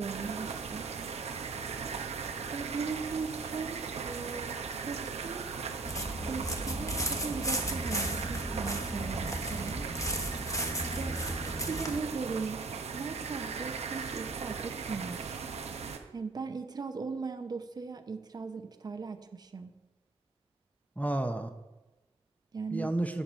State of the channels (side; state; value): left; quieter; 3.3 dB